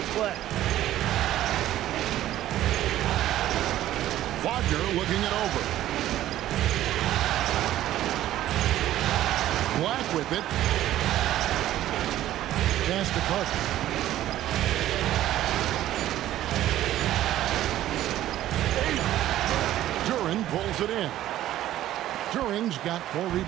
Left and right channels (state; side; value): quieter; left; 13.4 dB